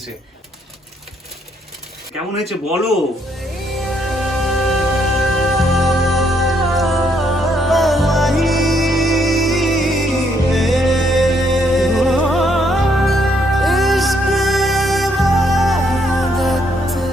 কেমন হয়েছে বলো।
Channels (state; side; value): normal; both; correlation 0.72